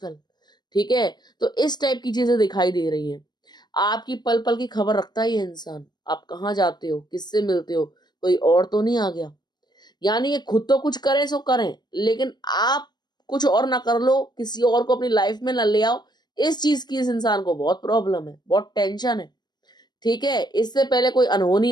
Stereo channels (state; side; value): late; right; 0.21 ms